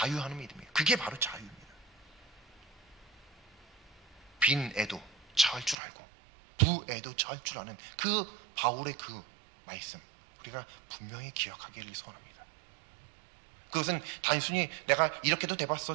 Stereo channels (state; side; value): drops out; left; at 5.8 s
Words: 믿음이에요. 그게 바로 자유입니다. 빈 애도 처할 줄 알고 부애도 처할 줄 아는 그 바울의 그 말씀, 우리가 분명히 기억하기를 소원합니다. 그것은 단순히 내가 이렇게도